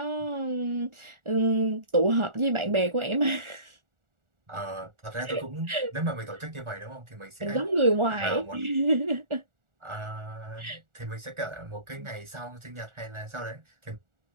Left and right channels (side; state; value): left; late; 1.4 ms